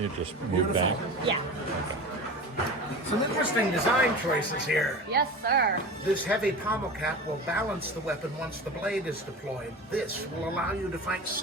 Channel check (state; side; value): normal; both; correlation 0.32